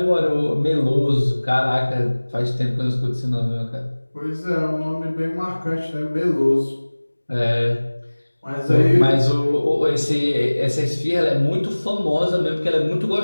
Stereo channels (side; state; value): both; inverted; correlation -1.00